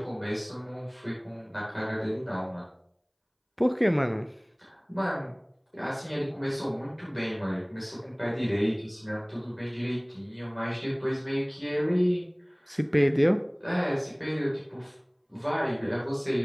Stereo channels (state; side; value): identical; both; correlation 1.00